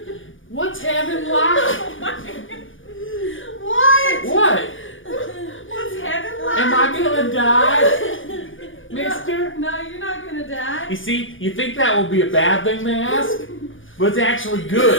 what's heaven like? What? What? What's heaven like? Am I gonna die, mister? No, you're not gonna die. You see, you think that would be a bad thing to ask? But it's actually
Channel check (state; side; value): late; right; 0.57 ms